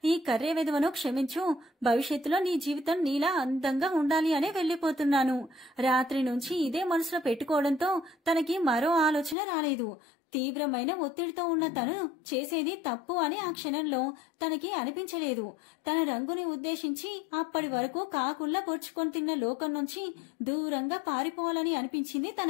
ఈ కర్రే విధవను క్షమించు. భవిష్యత్తులో నీ జీవితం నీలా అందంగా ఉండాలి అనే వెళ్లిపోతున్నాను. రాత్రి నుంచి ఇదే మనసులో పెట్టుకోవడంతో తనకి మరో ఆలోచన రాలేదు. తీవ్రమైన ఒత్తిడితో ఉన్న తను చేసేది తప్పు అని ఆ క్షణంలో తనకి అనిపించలేదు. తన రంగుని ఉద్దేశించి అప్పటి వరకు కాకుల్లా పొడుచుకొని తిన్న లోకం నుంచి దూరంగా పారిపోవాలని అనిపించింది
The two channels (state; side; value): drops out; right; at 9.3 s